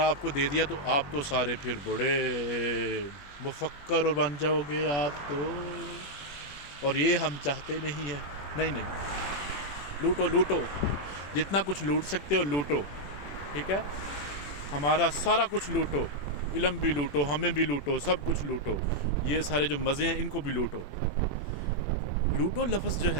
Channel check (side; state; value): right; late; 21 ms